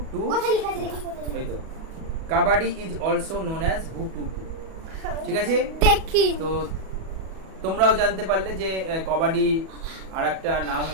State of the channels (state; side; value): late; left; 37 ms